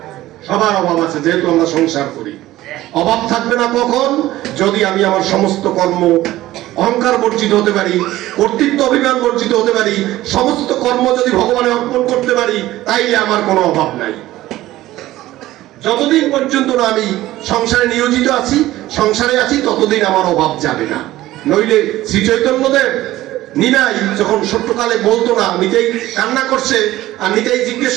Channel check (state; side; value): quieter; left; 15.8 dB